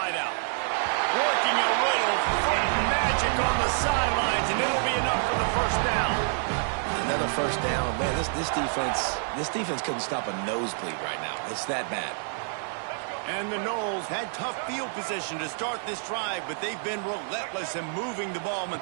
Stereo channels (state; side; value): silent; left; 59 dB below the other